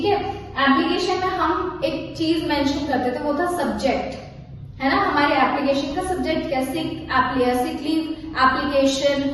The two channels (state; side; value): identical; both; correlation 1.00